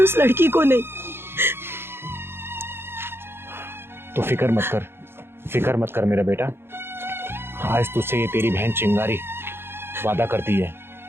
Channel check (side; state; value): left; late; 0.11 ms